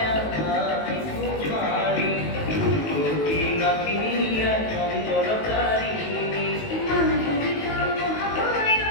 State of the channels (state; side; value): late; right; 19 ms